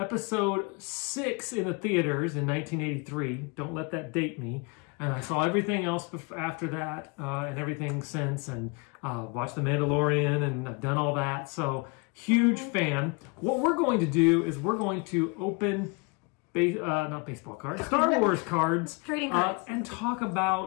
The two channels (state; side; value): quieter; right; 30.7 dB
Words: 6 in the theaters in 1983. Don't let that date me. And I saw everything else after that, and everything since, and watched The Mandalorian, and I've done all that. So, huge fan. What we're going to do is we're going to open, not baseball cards, Star Wars cards. Trading cards. And talk